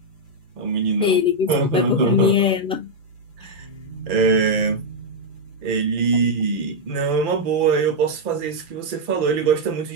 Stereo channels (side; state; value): left; late; 2.4 ms